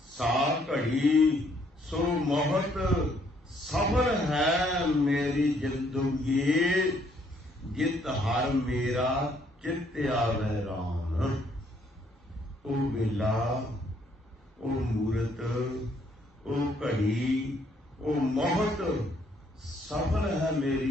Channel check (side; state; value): both; normal; correlation 0.67